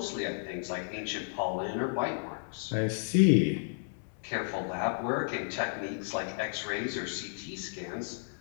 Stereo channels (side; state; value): right; silent; 56 dB below the other